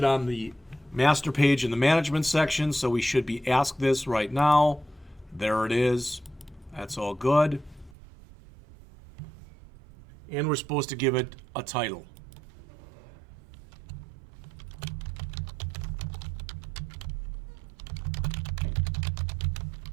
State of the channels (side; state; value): left; drops out; at 8.0 s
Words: on the master page in the management section, so we should be asked this right now. There it is. That's all good. And we're supposed to give it a title.